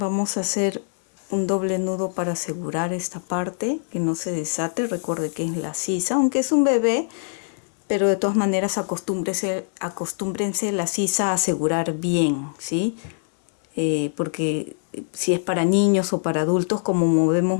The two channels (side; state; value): right; silent; 63 dB below the other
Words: a hacer un doble nudo para asegurar esta parte, que no se desate. Recuerde que es la sisa, aunque es un bebé, pero de todas maneras acostúmbrense la sisa a asegurar bien, ¿sí? Porque si es para niños o para adultos, como movemos